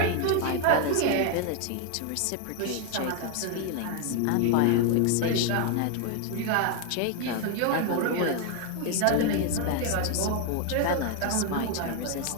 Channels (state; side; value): different; both; correlation 0.01